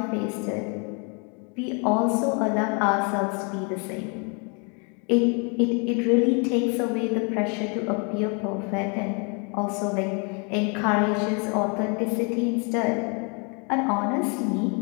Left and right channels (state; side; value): quieter; right; 35.6 dB